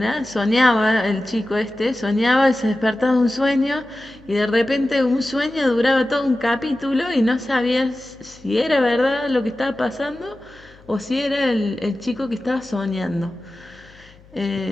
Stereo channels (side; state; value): left; noise; hum, 26 dB below the sound